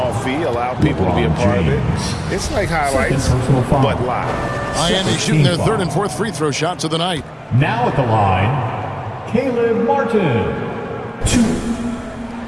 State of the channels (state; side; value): identical; both; correlation 1.00